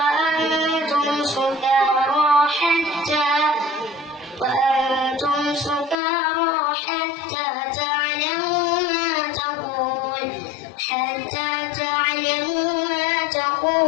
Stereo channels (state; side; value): drops out; right; at 6.0 s